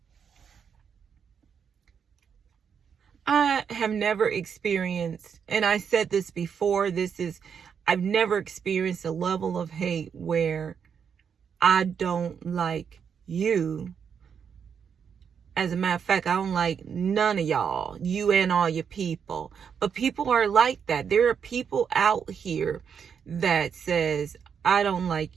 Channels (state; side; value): quieter; left; 7.1 dB